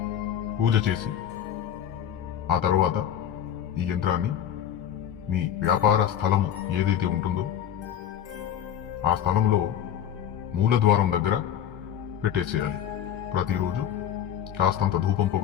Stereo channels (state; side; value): quieter; right; 9.9 dB